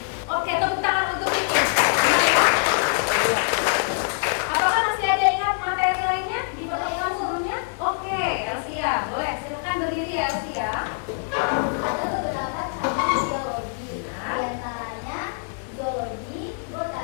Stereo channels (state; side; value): silent; right; digital silence